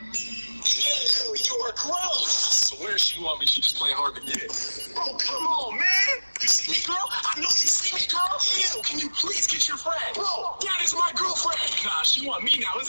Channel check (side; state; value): both; inverted; correlation -1.00